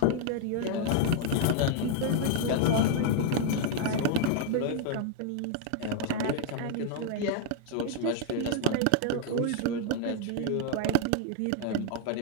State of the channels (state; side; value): different; both; correlation 0.00